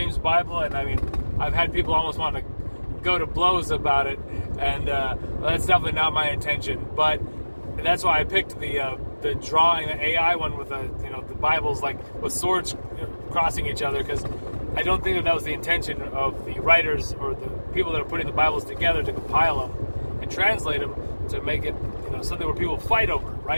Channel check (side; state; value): both; inverted; correlation -1.00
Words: Bible, and I mean, I've had people almost want to go to blows about it, and that's definitely not my intention. But that's why I picked the drawing, the AI one with the Bibles, like with swords crossing each other, because I don't think that was the intention of the writers or the people that are putting the Bibles together to compile them and translate them to make it something where people fight over,